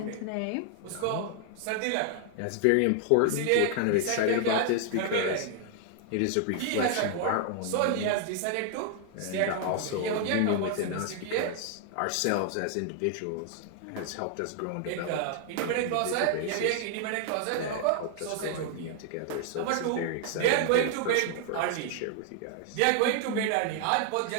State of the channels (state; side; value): different; both; correlation 0.00